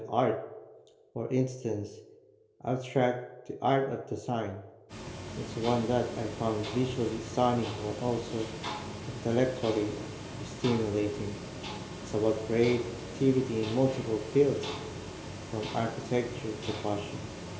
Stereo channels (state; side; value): identical; both; correlation 1.00